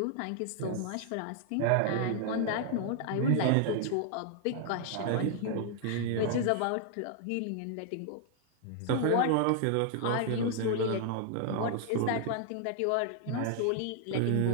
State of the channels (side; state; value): both; different; correlation 0.00